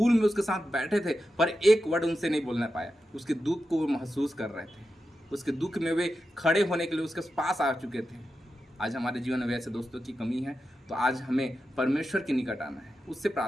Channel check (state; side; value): normal; both; correlation 0.90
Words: में उसके साथ बैठे थे, पर एक वर्ड उनसे नहीं बोलना पाया। उसके दुख को वो महसूस कर रहे थे, उसके दुख में वे खड़े होने के लिए उसके पास आ चुके थे। आज हमारे जीवन में ऐसे दोस्तों की कमी है, तो आज हमें परमेश्वर के निकट आना है, उससे